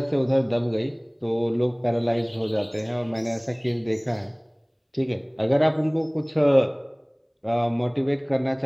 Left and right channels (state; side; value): identical; both; correlation 1.00